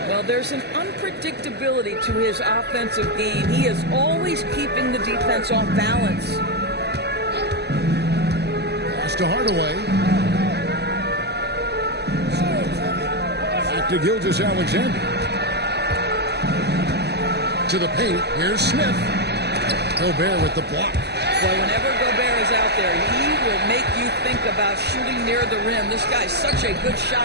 Well, know, there's an unpredictability to his offensive game. He is always keeping the defense off balance. Pass to Hardaway. Back to Gilgeous-Alexander. To the paint. Here's Smith. Gobert with the block. Well, whenever Gobert is out there, he will make you think about shooting near the rim. This guy's such a good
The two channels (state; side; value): late; left; 0.49 ms